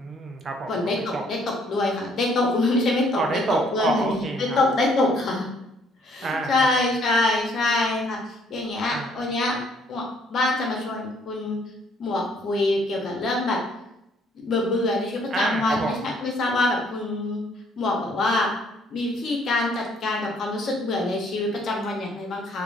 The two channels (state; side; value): normal; both; correlation 0.64